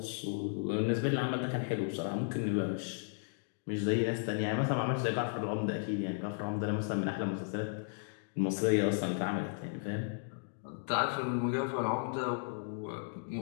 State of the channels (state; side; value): silent; right; digital silence